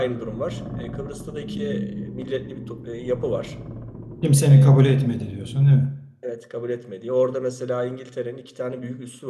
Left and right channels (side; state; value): both; identical; correlation 1.00